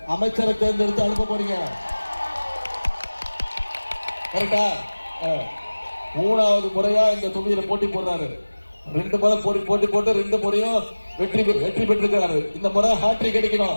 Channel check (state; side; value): inverted; both; correlation -1.00